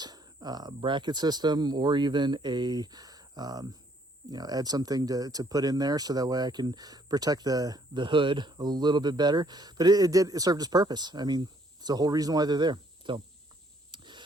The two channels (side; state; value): both; normal; correlation 0.65